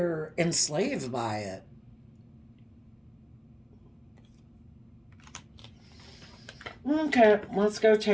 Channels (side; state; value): both; identical; correlation 1.00